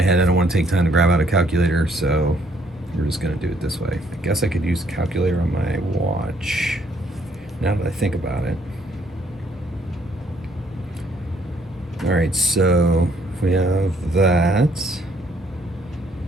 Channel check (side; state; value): both; normal; correlation 0.67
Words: head. I don't want to take time to grab out a calculator, so we're just gonna do it this way. I guess I could use a calculator on my watch, now that I think about it. All right, so if we have that.